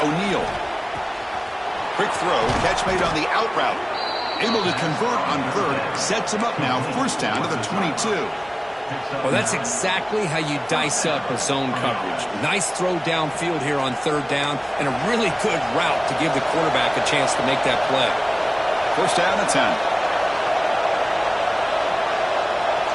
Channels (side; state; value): both; identical; correlation 1.00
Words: Quick throw, catch made on the out route. Able to convert on 3rd, sets him up now, first down to the 22. Well, that's exactly how you dice up a zone coverage. Nice throw downfield here on 3rd down, and a really good route to give the quarterback a chance to make that play. First down to 10.